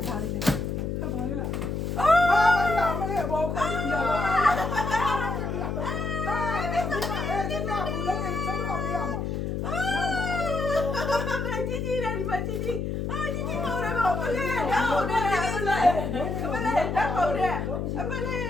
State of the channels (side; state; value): left; noise; hum, 2 dB below the sound